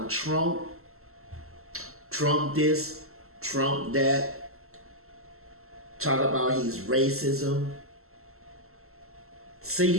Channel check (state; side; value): late; left; 0.63 ms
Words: Trump, Trump this, Trump that, talk about he's racism. See,